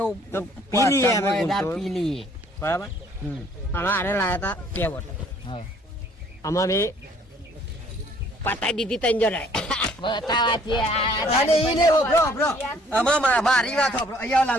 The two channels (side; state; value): both; normal; correlation 0.59